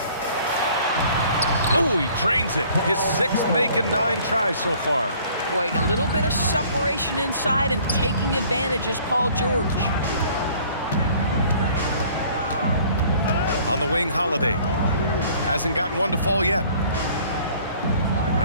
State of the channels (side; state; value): both; inverted; correlation -0.55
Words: Oh, he drains it. His 6th make in 9 tries so far. Boy, a little bit of separation inside and taking advantage is Paul George. On the wing, Holiday. Hasn't gotten one to fall yet.